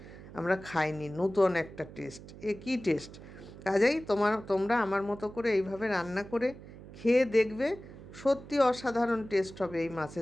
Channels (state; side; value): noise; right; hum, 16 dB below the sound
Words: আমরা খাইনি, নূতন একটা টেস্ট, এ কী টেস্ট। কাজেই তোমরা আমার মতো করে এইভাবে রান্না করে খেয়ে দেখবে, সত্যি অসাধারণ টেস্ট হবে এই